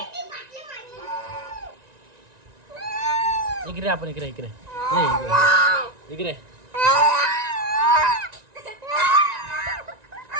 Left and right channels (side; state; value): left; late; 1.9 ms